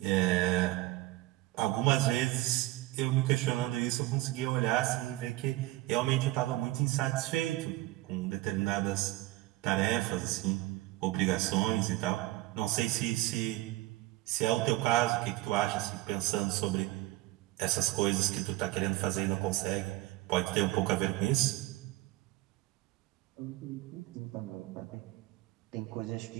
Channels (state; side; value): quieter; left; 18.2 dB